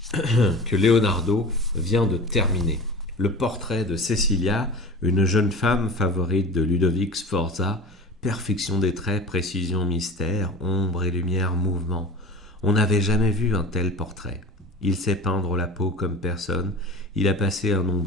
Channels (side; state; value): both; normal; correlation 0.37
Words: que Leonardo vient de terminer. Le portrait de Cecilia, une jeune femme favorite de Ludovic Sforza, perfection des traits, précision, mystère, ombre et lumière, mouvement. On n'avait jamais vu un tel portrait. Il sait peindre la peau comme personne. Il a passé un